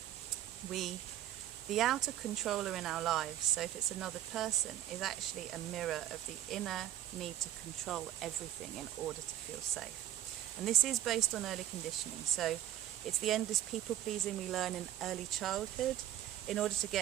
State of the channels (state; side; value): quieter; left; 12.2 dB